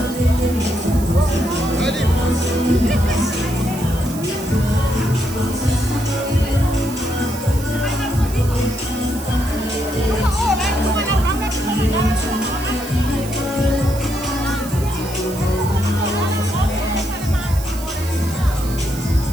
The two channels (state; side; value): noise; right; hiss, 13 dB below the sound